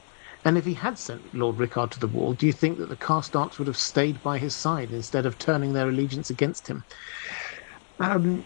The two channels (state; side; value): silent; right; digital silence